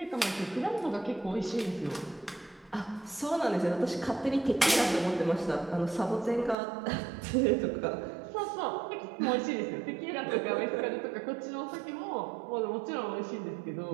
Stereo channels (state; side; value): drops out; left; at 6.6 s